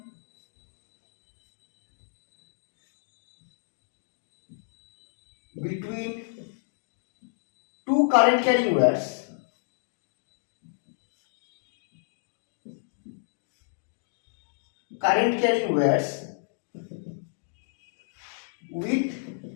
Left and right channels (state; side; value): silent; right; digital silence